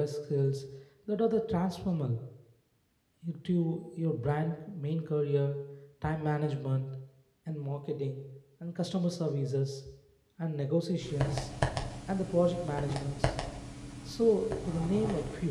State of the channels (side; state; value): both; identical; correlation 1.00